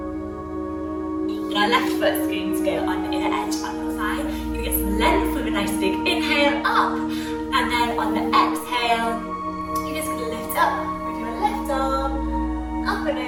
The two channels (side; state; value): both; identical; correlation 1.00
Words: And our left foot's going to go on the inner edge on your thigh. You're going to get some length with a nice big inhale up. And then on the exhale, you're just going to lift up with your left arm, up and